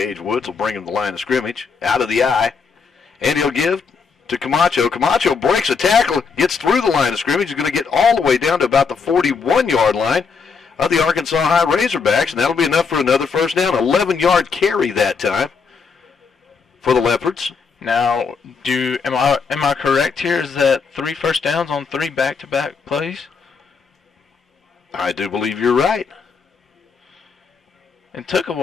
Woods will bring him to the line of scrimmage, out of the eye, and he'll give to Camacho. Camacho breaks a tackle, gets through the line of scrimmage. He's going to get all the way down to about the 41-yard line of the Arkansas High Razorbacks, and that'll be enough for another first down. 11-yard carry that time for the Leopards. Now, am I correct here? Is that 3 first downs on 3 back-to-back plays? I do believe you're right. It took a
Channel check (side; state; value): right; quieter; 5.4 dB